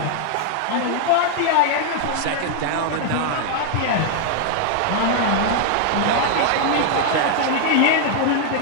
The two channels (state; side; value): different; both; correlation 0.00